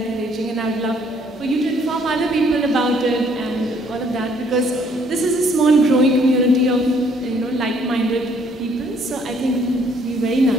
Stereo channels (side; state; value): both; normal; correlation 0.64